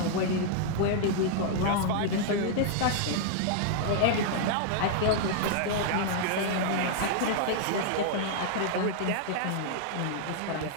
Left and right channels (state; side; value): different; both; correlation -0.01